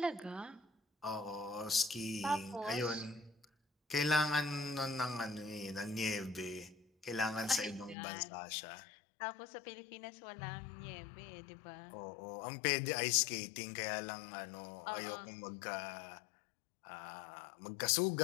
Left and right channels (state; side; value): drops out; right; at 8.0 s